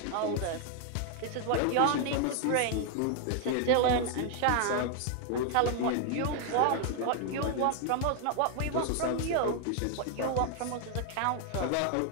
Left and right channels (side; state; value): both; different; correlation 0.00